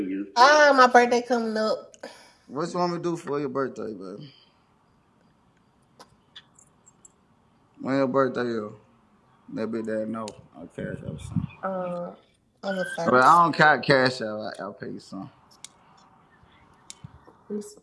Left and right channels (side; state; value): both; identical; correlation 1.00